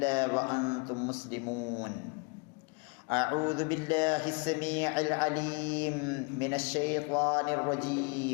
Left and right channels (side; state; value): right; quieter; 32.7 dB